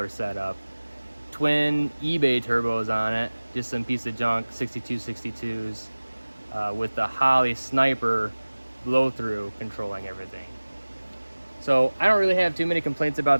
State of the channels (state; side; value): inverted; both; correlation -1.00